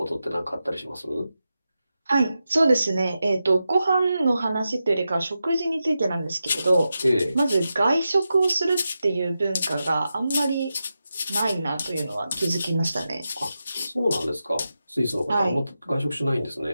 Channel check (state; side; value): inverted; both; correlation -0.90